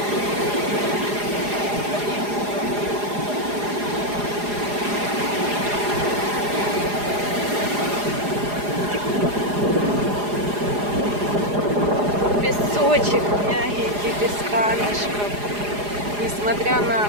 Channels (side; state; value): left; late; 4.9 ms